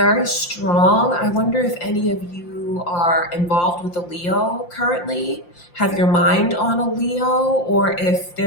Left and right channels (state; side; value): late; right; 5.7 ms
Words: strong. I wonder if any of you are involved with a Leo currently, have your mind on a Leo, or if